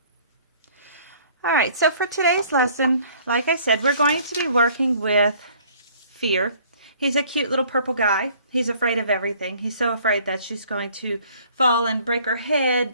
All right, so for today's lesson, like I said, we're going to be working with fear. He's a cute little purple guy. He's afraid of everything. He's so afraid that she's going to fall and break her head,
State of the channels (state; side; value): inverted; both; correlation -0.56